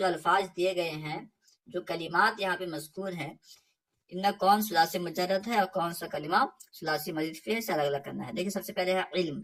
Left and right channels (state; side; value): identical; both; correlation 1.00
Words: الفاظ دیے گئے ہیں، جو کلمات یہاں پہ مذکور ہیں، ان میں کون ثلاثی مجرد ہے اور کون سا کلمہ ثلاثی مزید فی سے الگ الگ کرنا ہے. دیکھیں سب سے پہلے ہے علم.